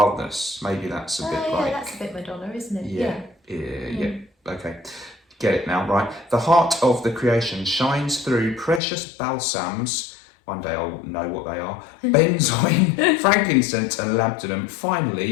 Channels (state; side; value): drops out; right; at 8.8 s